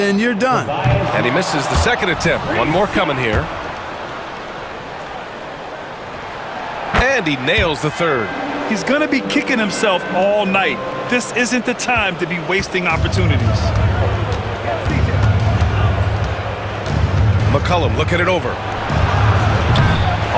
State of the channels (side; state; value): both; identical; correlation 1.00